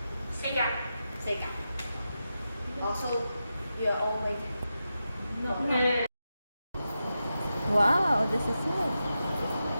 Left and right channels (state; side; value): inverted; both; correlation -0.90